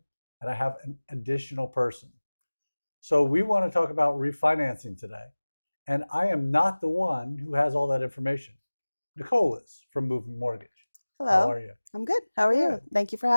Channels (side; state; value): both; inverted; correlation -1.00